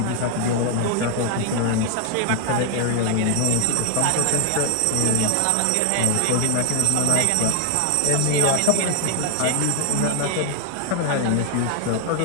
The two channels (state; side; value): different; both; correlation 0.00